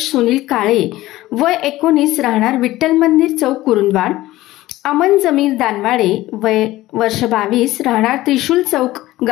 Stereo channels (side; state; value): right; quieter; 16.7 dB